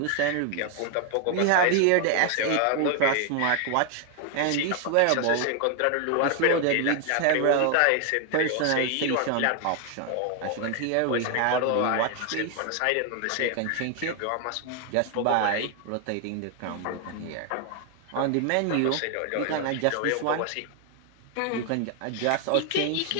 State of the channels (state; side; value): different; both; correlation 0.00